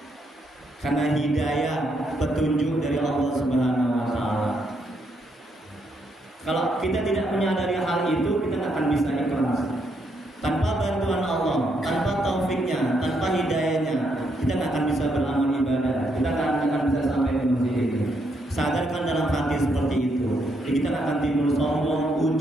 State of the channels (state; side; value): normal; both; correlation 0.76